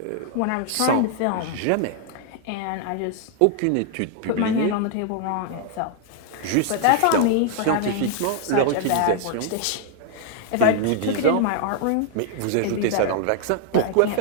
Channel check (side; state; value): both; different; correlation 0.00